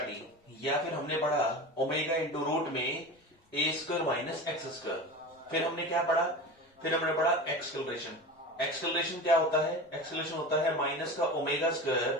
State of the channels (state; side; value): normal; both; correlation 0.31